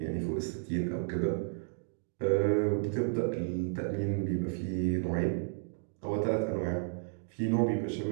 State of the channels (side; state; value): left; silent; digital silence